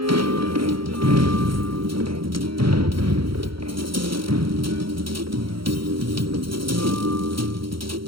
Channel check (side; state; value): left; late; 0.74 ms